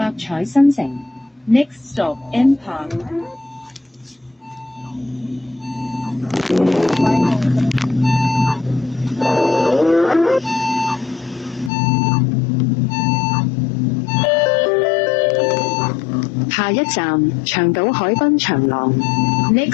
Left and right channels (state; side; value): drops out; right; at 11.7 s